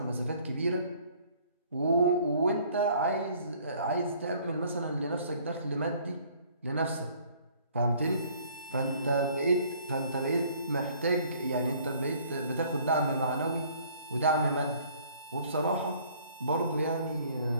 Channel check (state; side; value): inverted; both; correlation -0.58